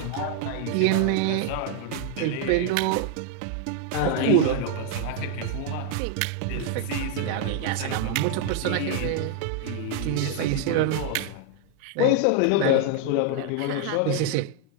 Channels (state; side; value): different; both; correlation 0.00